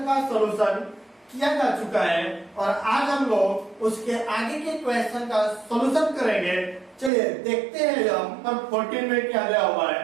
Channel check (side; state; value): left; drops out; at 7.1 s